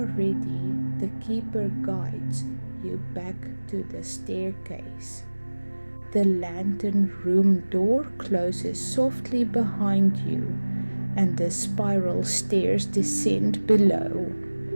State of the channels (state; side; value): inverted; both; correlation -1.00